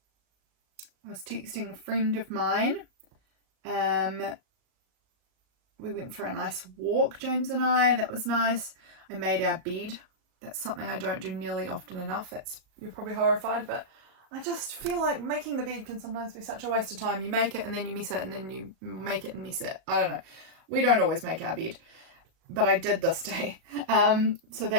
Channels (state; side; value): late; left; 37 ms